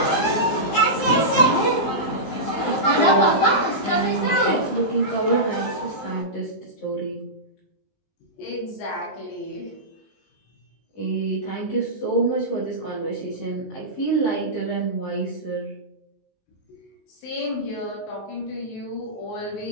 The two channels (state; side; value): late; right; 19 ms